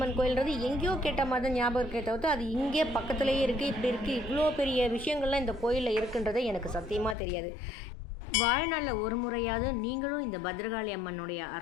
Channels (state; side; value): drops out; right; at 7.2 s